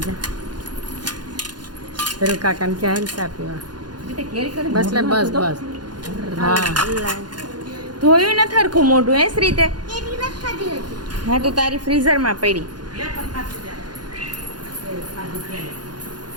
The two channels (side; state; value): left; late; 0.70 ms